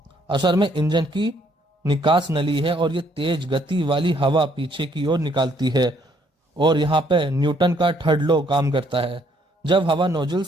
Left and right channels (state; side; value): normal; both; correlation 0.67